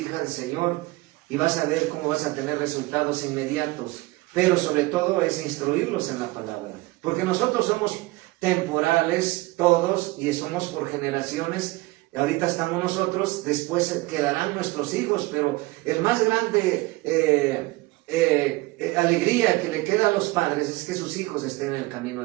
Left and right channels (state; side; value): quieter; left; 21.3 dB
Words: el Señor y vas a ver cómo vas a tener resultados inmediatos. Pero sobre todo es instruirlos en la palabra, porque nosotros somos temporales todos y somos por generaciones. Ahorita estamos nosotros, después quedarán nuestros hijos, pero el más grande alegría que le queda a los padres es que sus hijos estén en el camino